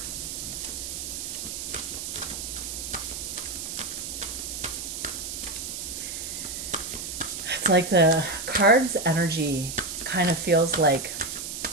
It's like the card's energy kind of feels like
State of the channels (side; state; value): right; noise; hiss, 6 dB below the sound